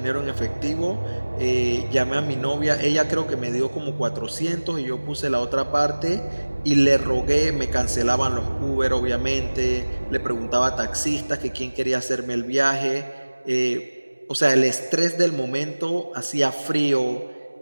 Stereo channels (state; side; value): inverted; both; correlation -1.00